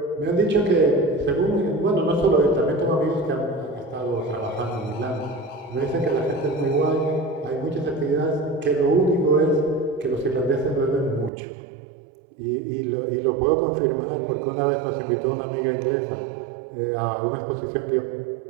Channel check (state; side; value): drops out; left; at 11.3 s